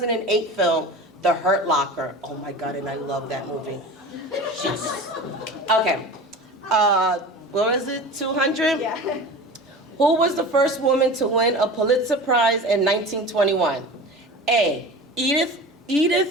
film, The Hurt Locker. Oh my God, and I love that movie. Okay. What was it, 200? Yeah. Who was the first woman to win a Pulitzer Prize in 1921? A, Edith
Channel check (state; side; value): normal; both; correlation 0.34